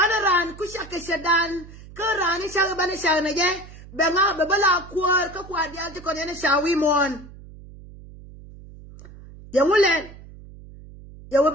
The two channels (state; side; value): noise; right; hum, 18 dB below the sound